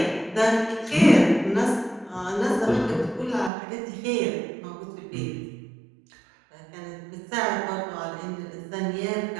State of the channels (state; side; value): drops out; left; at 3.5 s